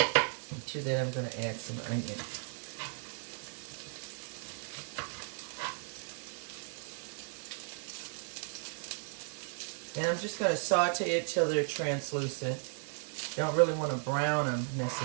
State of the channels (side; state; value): left; silent; 54 dB below the other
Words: And to that I'm going to add some onion. And I'm just going to saute it till they're translucent. Don't really want to brown them